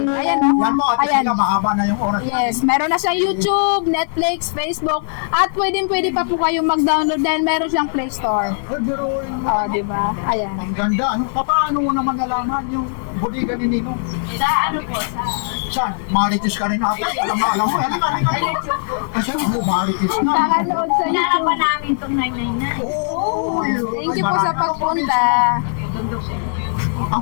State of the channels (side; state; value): right; silent; 62 dB below the other